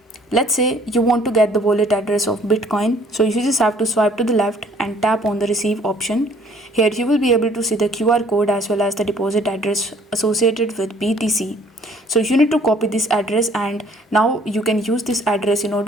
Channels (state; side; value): normal; both; correlation 0.58